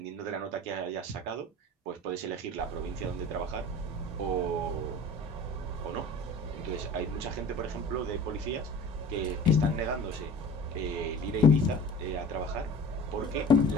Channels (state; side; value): normal; both; correlation 0.42